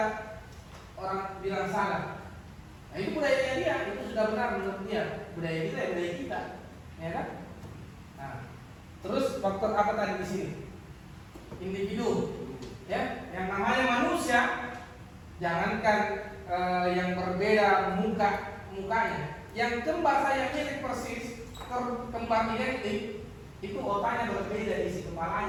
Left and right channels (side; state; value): both; identical; correlation 1.00